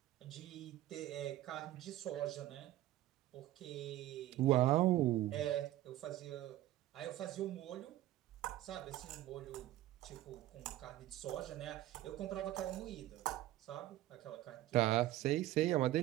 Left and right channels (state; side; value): quieter; left; 14.8 dB